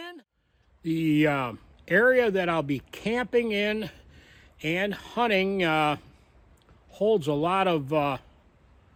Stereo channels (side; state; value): both; identical; correlation 1.00